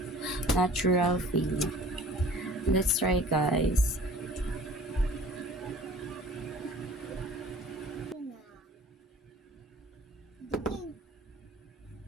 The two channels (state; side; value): normal; both; correlation 0.48